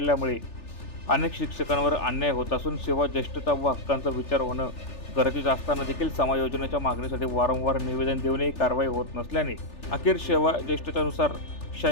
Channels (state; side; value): late; right; 3.4 ms